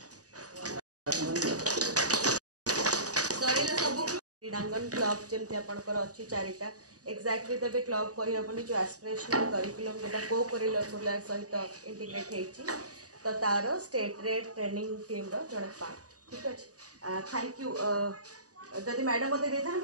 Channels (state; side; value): late; left; 0.67 ms